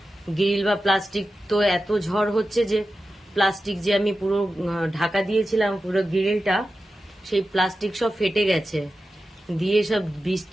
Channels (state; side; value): normal; both; correlation 0.92